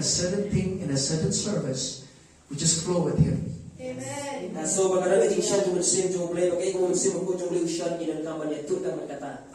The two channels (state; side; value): identical; both; correlation 1.00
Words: certain thing in a certain service, we just flow with Him. Amen.